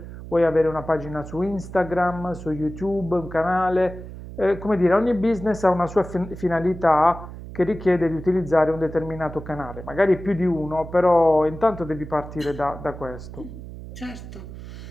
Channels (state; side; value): noise; right; hum, 12 dB below the sound